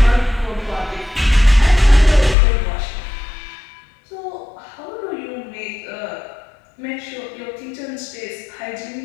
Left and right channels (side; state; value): right; drops out; at 2.4 s